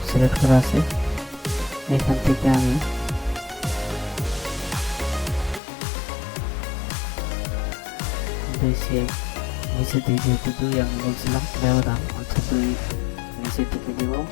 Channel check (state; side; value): drops out; right; at 5.6 s